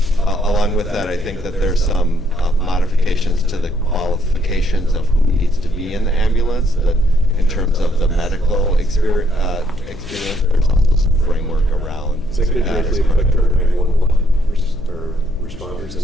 along with that, I think that there's some modifications to the qualifications of who needs to be in the ambulance. That in terms of the medical experience, there's also some framework around. Is that going to directly affect our 911 or responders in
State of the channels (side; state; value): left; noise; hum, 14 dB below the sound